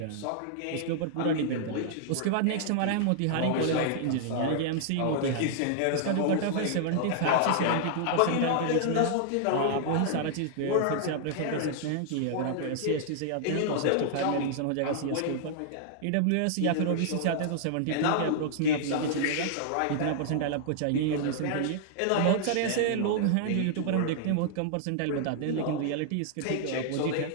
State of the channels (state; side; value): different; both; correlation -0.01